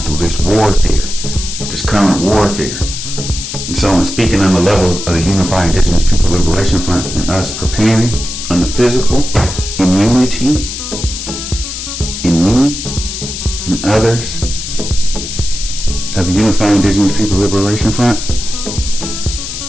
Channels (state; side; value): noise; left; hiss, 7 dB below the sound